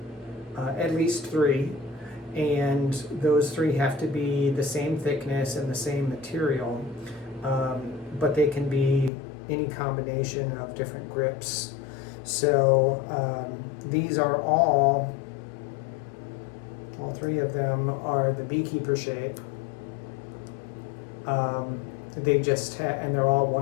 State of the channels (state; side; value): drops out; right; at 9.1 s